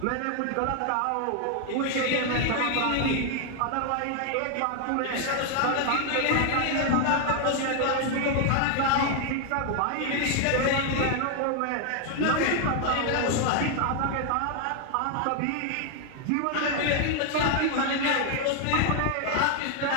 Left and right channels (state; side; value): different; both; correlation 0.00